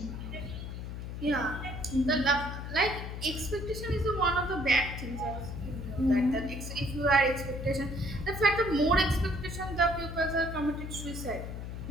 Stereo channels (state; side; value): noise; left; hum, 7 dB below the sound